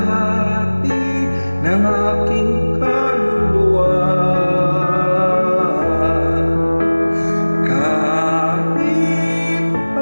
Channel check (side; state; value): both; inverted; correlation -1.00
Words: ng aking kaluluwa. Kahit